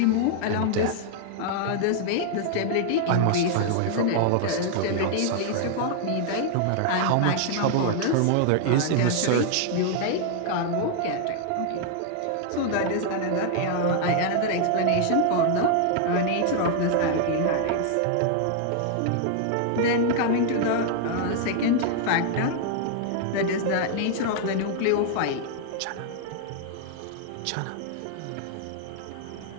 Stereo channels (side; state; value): both; different; correlation 0.00